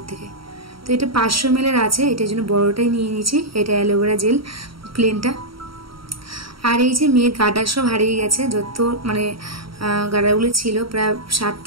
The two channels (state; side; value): late; left; 0.75 ms